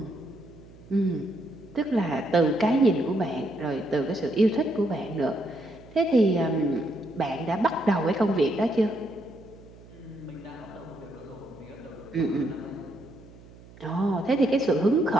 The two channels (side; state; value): right; noise; hum, 21 dB below the sound